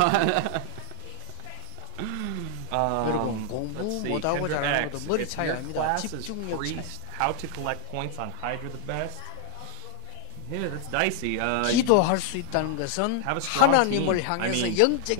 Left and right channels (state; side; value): different; both; correlation 0.00